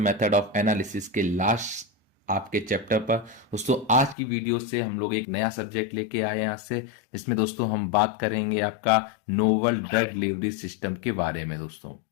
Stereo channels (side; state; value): right; drops out; at 4.2 s